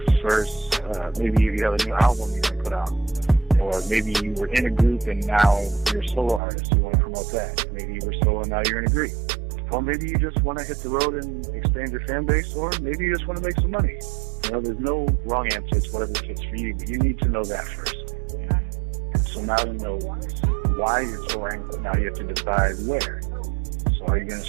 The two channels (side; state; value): left; drops out; at 6.4 s